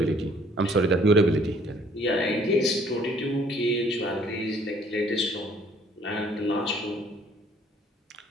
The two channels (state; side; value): normal; both; correlation 0.60